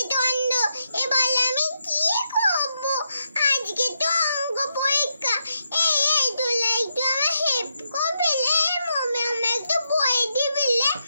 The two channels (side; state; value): both; inverted; correlation -0.82